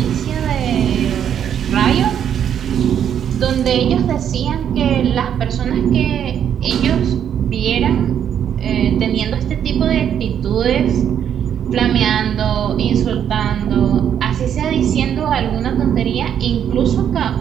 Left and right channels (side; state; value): left; quieter; 9.1 dB